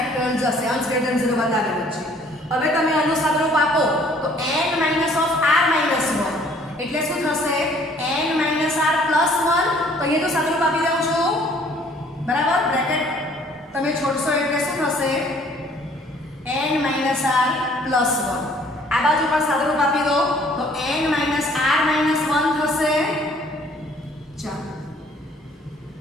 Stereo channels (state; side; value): normal; both; correlation 0.58